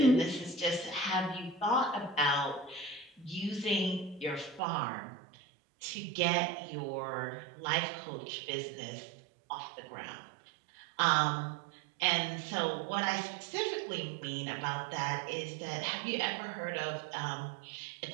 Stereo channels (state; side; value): drops out; left; at 4.6 s